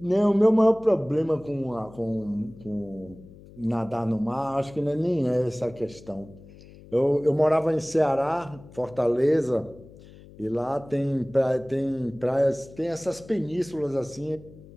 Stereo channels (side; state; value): left; noise; hum, 20 dB below the sound